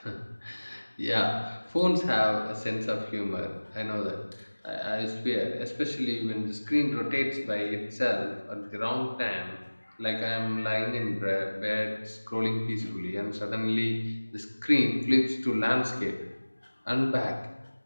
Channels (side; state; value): both; inverted; correlation -1.00